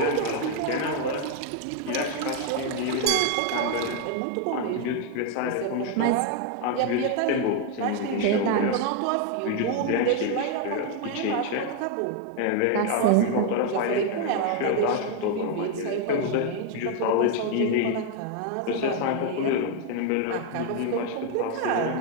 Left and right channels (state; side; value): different; both; correlation 0.01